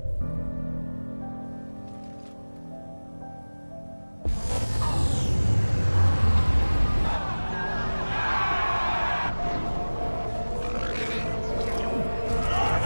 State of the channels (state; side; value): inverted; both; correlation -1.00